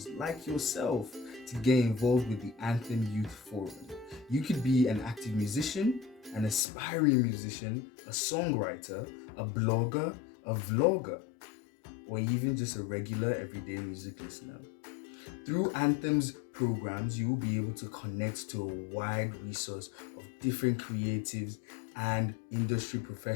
like yourself to get involved with the Anthem Youth Forum. You could be an active musician, an aspiring musician, a songwriter, a blogger, a vlogger, or even just a regular everyday music listener. Through Anthem's programs, you will be able to connect to a wide resource of different creatives and industry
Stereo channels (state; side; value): drops out; right; at 6.7 s